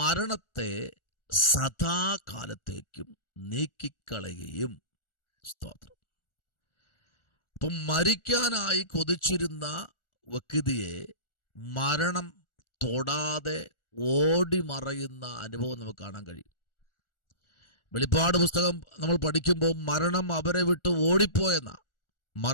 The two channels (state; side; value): late; right; 1.4 ms